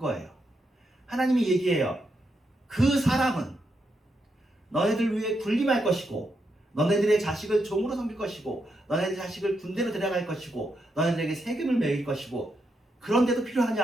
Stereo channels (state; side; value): normal; both; correlation 0.82